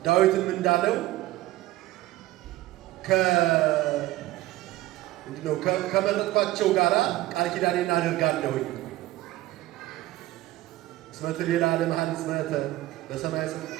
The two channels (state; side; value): quieter; left; 16.7 dB